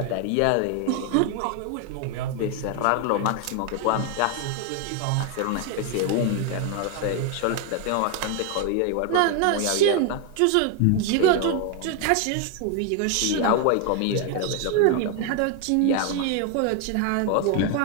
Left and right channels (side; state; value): both; different; correlation 0.01